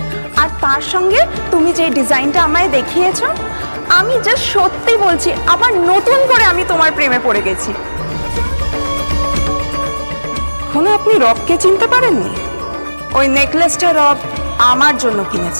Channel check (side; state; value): both; inverted; correlation -1.00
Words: আর তার সঙ্গে তুমি যে ডিজাইনটা আমায় দেখিয়েছো, আমি জাস্ট সত্যি বলছি আবার নতুন করে আমি তোমার প্রেমে পড়ে গেছি। এখনো আপনি রবকে চিনতে পারেননি? ওই নেকলেসটা রব আমার জন্য